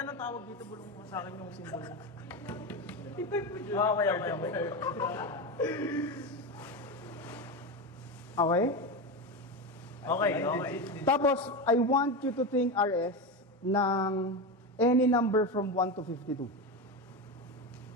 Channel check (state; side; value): normal; both; correlation 0.17